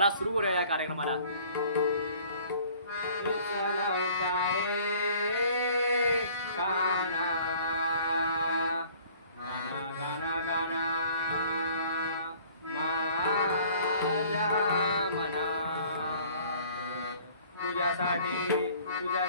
सुरू करूया या कार्यक्रमाला.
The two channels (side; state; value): both; inverted; correlation -0.53